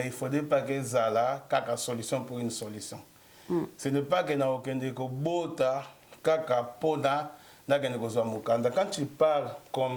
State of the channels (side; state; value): both; identical; correlation 1.00